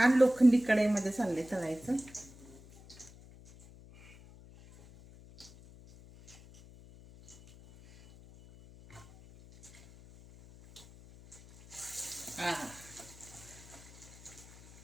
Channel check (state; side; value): noise; left; hum, 21 dB below the sound